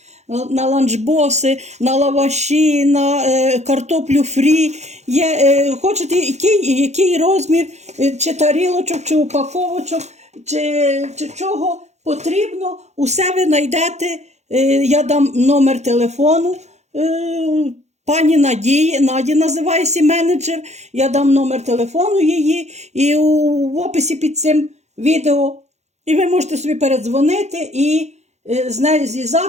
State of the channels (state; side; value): late; left; 0.33 ms